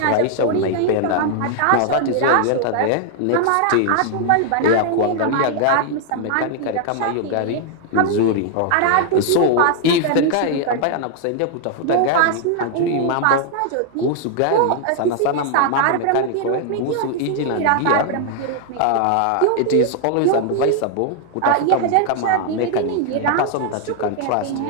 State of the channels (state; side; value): different; both; correlation 0.00